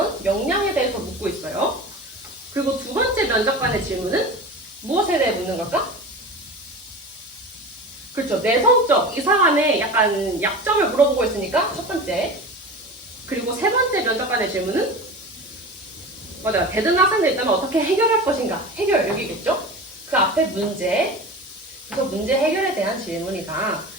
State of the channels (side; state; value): both; normal; correlation 0.32